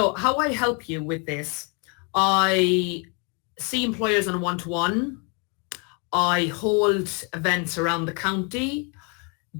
how I help you with this, I see employers on a one-to-one. I hold events around the county.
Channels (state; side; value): quieter; right; 35.3 dB